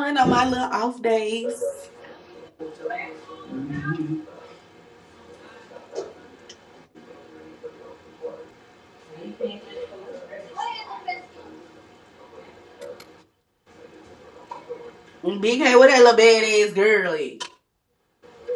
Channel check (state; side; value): identical; both; correlation 1.00